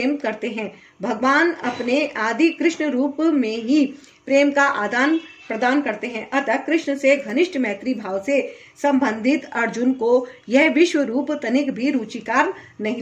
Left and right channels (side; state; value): both; identical; correlation 1.00